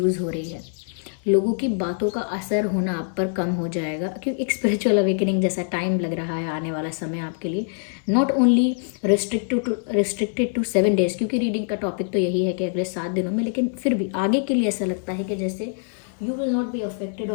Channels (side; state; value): right; silent; 63 dB below the other